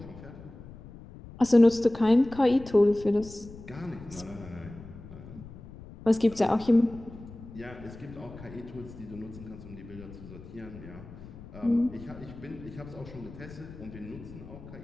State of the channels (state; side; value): noise; left; rumble, 16 dB below the sound